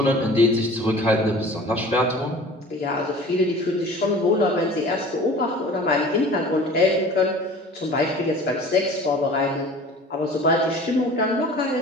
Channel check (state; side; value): normal; both; correlation 0.43